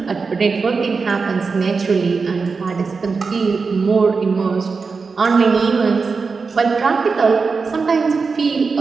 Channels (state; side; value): quieter; left; 4.7 dB